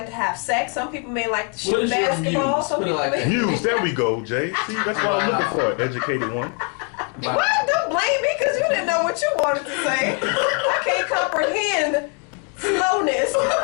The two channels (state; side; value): quieter; right; 38.7 dB